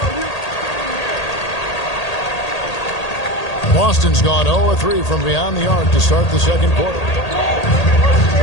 Boston's gone 0-3 from beyond the arc to start the second quarter.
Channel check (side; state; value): right; late; 1.8 ms